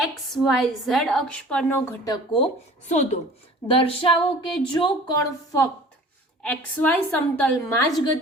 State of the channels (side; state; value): both; normal; correlation 0.46